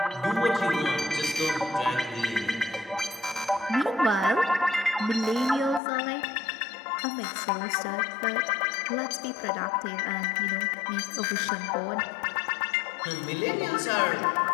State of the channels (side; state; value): right; drops out; at 5.8 s